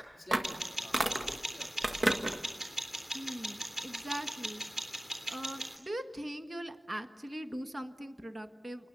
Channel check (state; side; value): normal; both; correlation 0.95